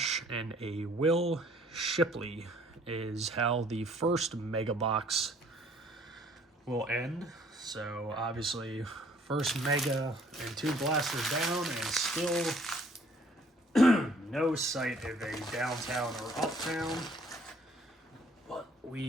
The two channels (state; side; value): normal; both; correlation 0.59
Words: and a Will Shipley is how the first mega box will end. So obviously, first mega and 2 blasters down, and still no sight of a downtown or uptown. But